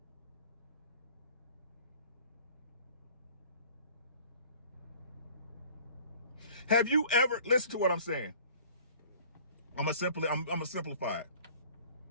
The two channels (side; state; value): both; inverted; correlation -0.49